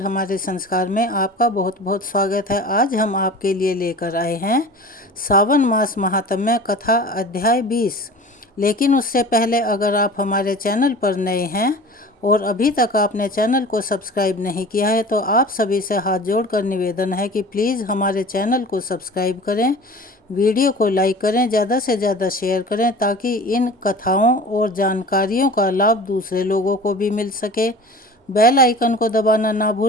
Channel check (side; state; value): both; normal; correlation 0.39